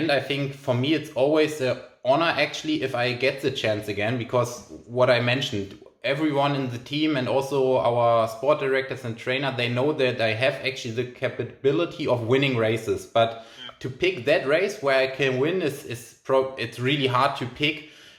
I think for me it's always an honor actually if I get the chance again, because what I mentioned, everyone in the team and also our sport directors and trainer, they know that I have actually the capability of winning races, but to pick that race where I can win it's really hard to pick,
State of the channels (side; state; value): both; identical; correlation 1.00